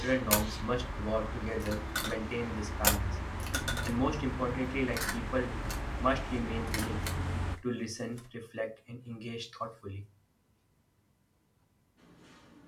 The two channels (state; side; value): identical; both; correlation 1.00